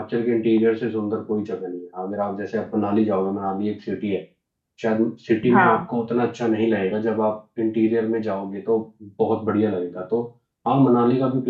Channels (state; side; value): identical; both; correlation 1.00